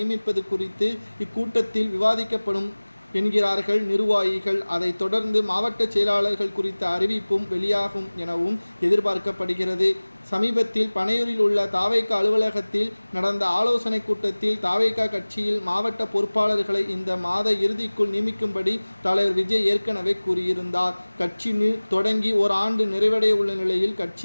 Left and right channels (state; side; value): inverted; both; correlation -1.00